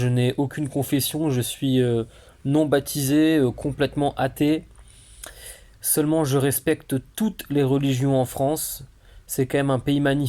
n'ai aucune confession, je suis non baptisé, complètement athée. Seulement je respecte toutes les religions en France. C'est quand même un pays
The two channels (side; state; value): both; identical; correlation 1.00